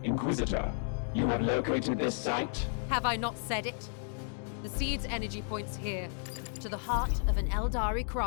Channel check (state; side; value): silent; right; 56 dB below the other